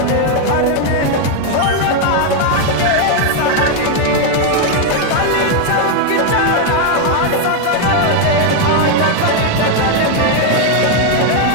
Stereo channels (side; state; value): both; different; correlation 0.01